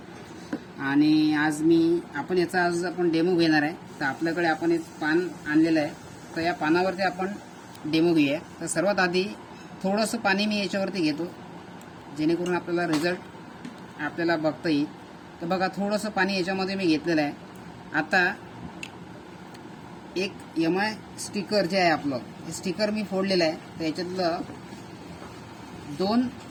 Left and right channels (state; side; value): identical; both; correlation 1.00